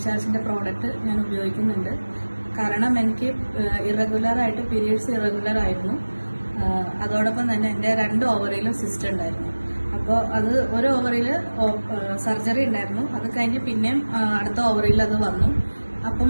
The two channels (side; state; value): both; inverted; correlation -1.00